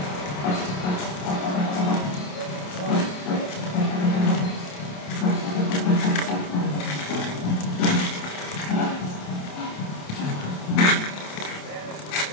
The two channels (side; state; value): right; late; 27 ms